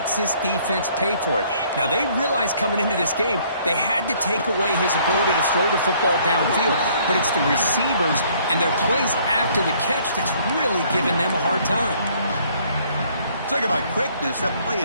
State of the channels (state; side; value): inverted; both; correlation -0.61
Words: this defense pay for it. Now, they realized coming into this game they had to take away his ability to throw the football downfield. But it's the receivers and their plays after the catch that's really giving them a hard time. Talk about quickness. That play